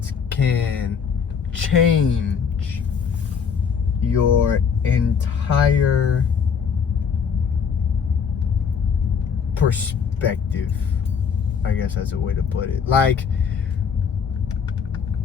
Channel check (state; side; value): quieter; right; 6.5 dB